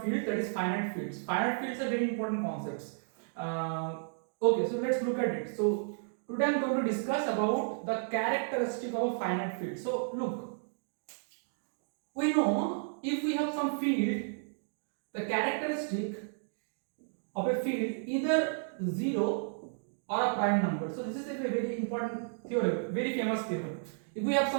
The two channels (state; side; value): silent; left; digital silence